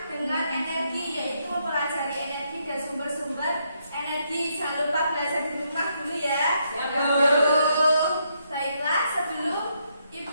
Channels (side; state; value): both; inverted; correlation -0.76